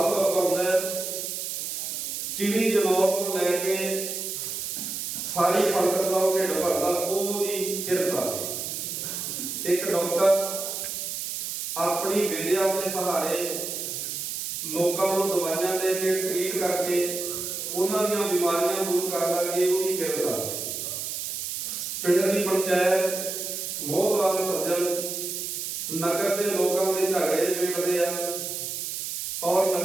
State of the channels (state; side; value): noise; right; hiss, 4 dB below the sound